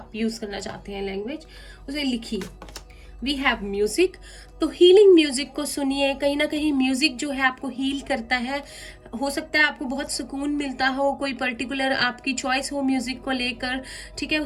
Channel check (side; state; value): both; identical; correlation 1.00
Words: यूज करना चाहते हैं लैंग्वेज, उसे लिखिए। वी हैव म्यूजिक, तो हीलिंग म्यूजिक को सुनिए। कहीं ना कहीं म्यूजिक जो है आपको हील करता है। हो सकता है आपको बहुत सुकून मिलता हो, कोई पर्टिकुलर आपकी चॉइस हो म्यूजिक को लेकर, ठीक है।